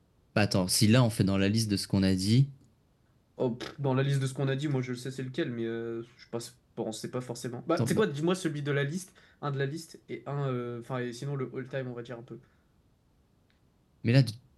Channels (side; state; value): both; identical; correlation 1.00